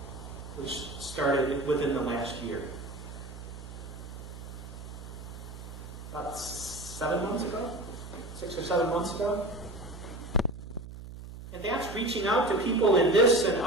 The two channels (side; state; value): right; noise; hum, 12 dB below the sound